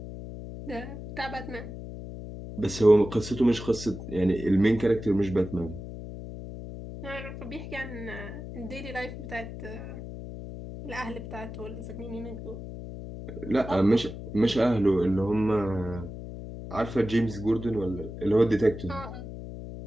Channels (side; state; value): left; noise; hum, 10 dB below the sound